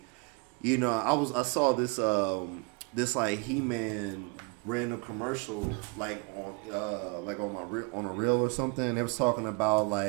I saw this, He-Man random commercial, on a reel or something. They was talking about,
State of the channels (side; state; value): left; quieter; 31.7 dB